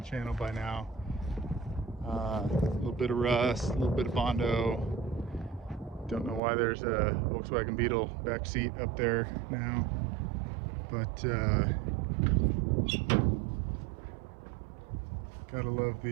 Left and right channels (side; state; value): left; drops out; at 6.4 s